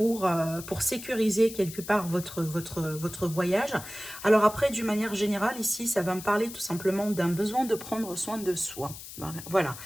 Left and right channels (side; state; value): left; noise; hiss, 13 dB below the sound